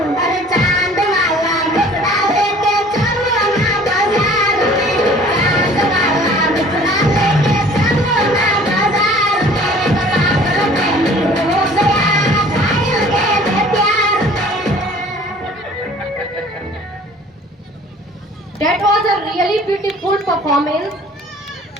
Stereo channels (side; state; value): both; normal; correlation 0.50